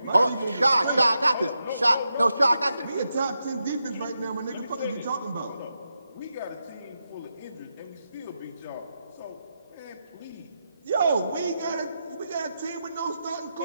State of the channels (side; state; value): both; inverted; correlation -0.86